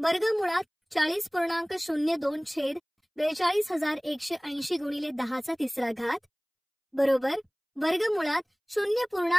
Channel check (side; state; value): both; identical; correlation 1.00